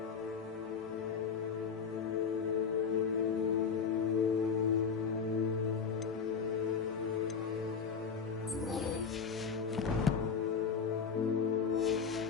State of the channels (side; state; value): right; quieter; 6.0 dB